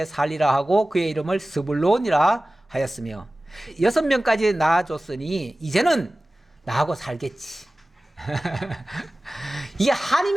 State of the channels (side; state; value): both; normal; correlation 0.97